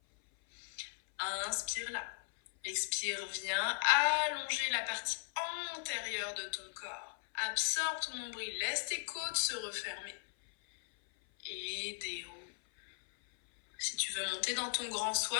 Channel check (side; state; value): right; silent; 53 dB below the other